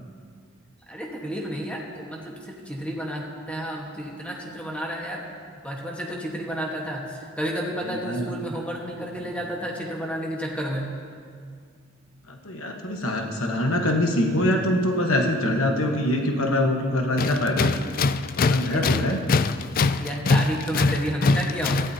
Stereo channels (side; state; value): both; normal; correlation 0.57